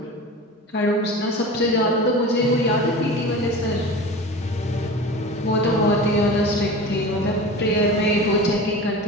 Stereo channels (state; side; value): normal; both; correlation 0.33